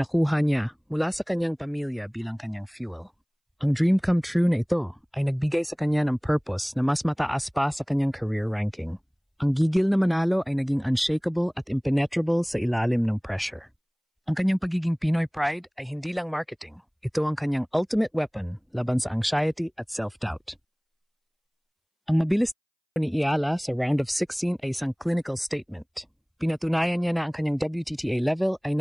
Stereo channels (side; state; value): both; identical; correlation 1.00